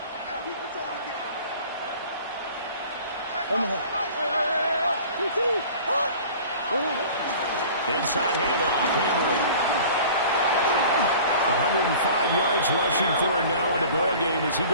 Inside handoff, Henry. 105 yards rushing for him now in the ball game as he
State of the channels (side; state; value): both; inverted; correlation -0.44